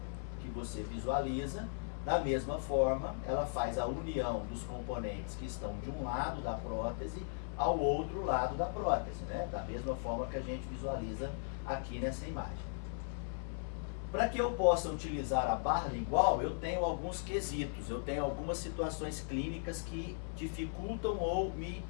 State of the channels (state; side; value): silent; right; 53 dB below the other